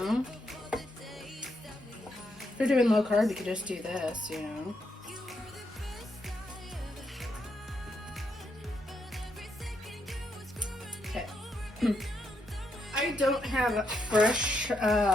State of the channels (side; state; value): both; normal; correlation 0.79